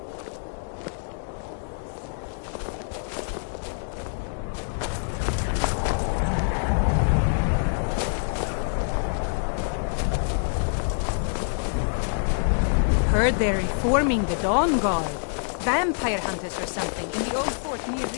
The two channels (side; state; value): right; silent; digital silence